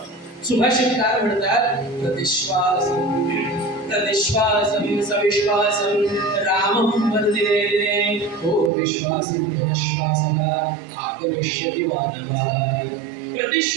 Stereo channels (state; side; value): drops out; left; at 8.7 s